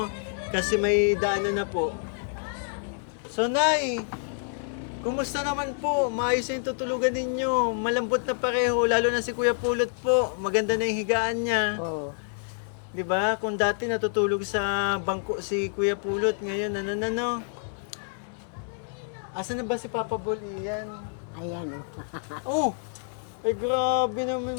kasi may daanan na po. So, Nay, kumusta naman po? Maayos na yung tutulugan ninyo. Malambot na pareho, lalo na si Kuya Pulot po. Maganda na yung higaan niya. Oo. 'Di ba? Kung dati natutulog sa bangko si Kuya Pulot, ngayon Asan na ba si Papa Bol iyan? Ayan Oh! o. Ay grabe naman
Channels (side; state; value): right; silent; digital silence